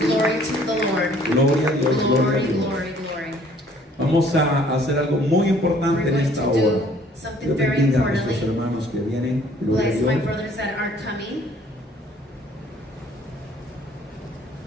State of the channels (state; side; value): normal; both; correlation 0.58